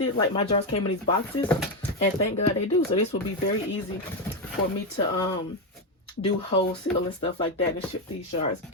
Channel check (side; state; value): both; normal; correlation 0.08